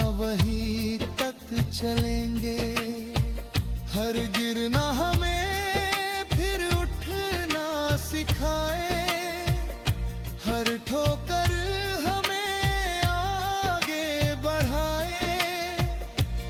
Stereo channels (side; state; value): both; identical; correlation 1.00